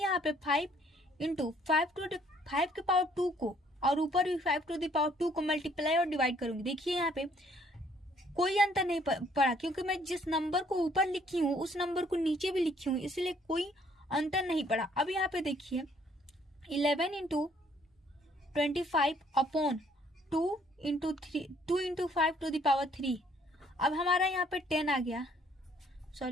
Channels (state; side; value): normal; both; correlation 0.63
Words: पे 5 × 5 के पावर 2 को और ऊपर भी 5 को मल्टीप्लाई और डिवाइड करूंगी। देखिए यहाँ पे कोई अंतर नहीं पड़ा, क्योंकि मैं जिस नंबर को ऊपर लिखी हूँ उस नंबर को नीचे भी लिखी हूँ, इसलिए कोई अंतर नहीं पड़ा। अब यहाँ पे देखिए 11 × 25/2 × 5 3। अब हमारा यहाँ पे 10 आ गया।